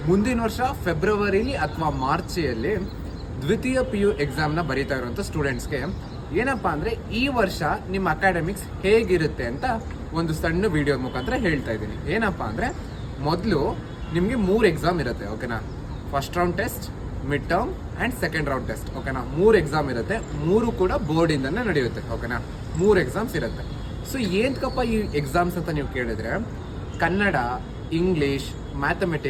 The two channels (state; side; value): identical; both; correlation 1.00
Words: ಮುಂದಿನ ವರ್ಷ ಫೆಬ್ರವರಿಲಿ ಅಥವಾ ಮಾರ್ಚಿಯಲ್ಲಿ ದ್ವಿತೀಯ PU ಎಕ್ಸಾಮ್ನ ಬರೀತಾ ಇರುವಂಥ ಸ್ಟೂಡೆಂಟ್ಸ್ಗೆ ಏನಪ್ಪ ಅಂದರೆ ಈ ವರ್ಷ ನಿಮ್ಮ ಅಕಾಡೆಮಿಕ್ಸ್ ಹೇಗಿರುತ್ತೆ ಅಂತ ಒಂದು ಸಣ್ಣ ವಿಡಿಯೋ ಮುಖಾಂತರ ಹೇಳ್ತಾ ಇದ್ದೀನಿ. ಏನಪ್ಪ ಅಂದರೆ ಮೊದಲು ನಿಮಗೆ 3 ಎಕ್ಸಾಮ್ ಇರುತ್ತೆ, ಓಕೆನಾ. First round test, mid term and second round test, ಓಕೆನಾ. 3 ಎಕ್ಸಾಮ್ ಇರುತ್ತೆ, 3 ಕೂಡ ಬೋರ್ಡಿಂದನೇ ನಡೆಯುತ್ತೆ, ಓಕೆನಾ. 3 ಎಕ್ಸಾಮ್ಸ್ ಇರುತ್ತೆ. ಸೊ ಏನಕ್ಕಪ್ಪ ಈ ಎಕ್ಸಾಮ್ಸ್ ಅಂತ ನೀವು ಕೇಳಿದ್ರೆ, Kannada, English,